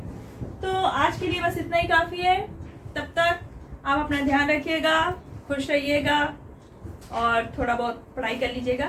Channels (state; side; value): identical; both; correlation 1.00